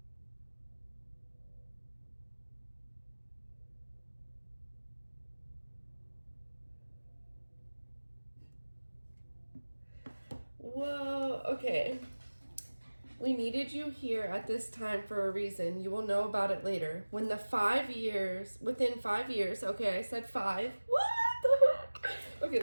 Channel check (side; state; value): both; inverted; correlation -1.00